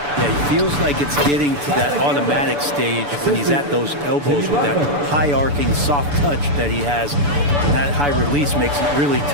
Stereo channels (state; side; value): late; left; 6.9 ms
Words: Yeah, he feels like it's getting to that automatic stage when he's at those elbows with that high arcing soft touch that he has. And that high release makes it really